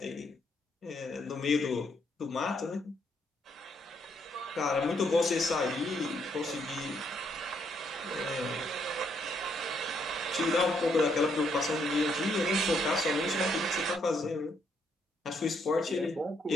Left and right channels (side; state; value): both; normal; correlation 0.73